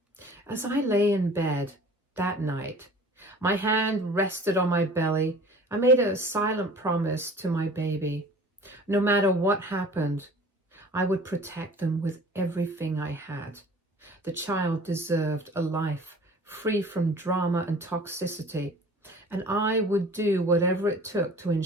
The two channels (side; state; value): both; normal; correlation 0.46